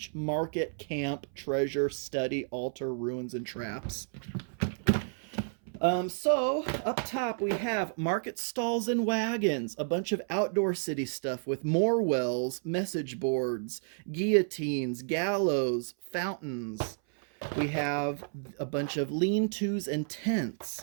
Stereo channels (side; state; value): left; silent; 57 dB below the other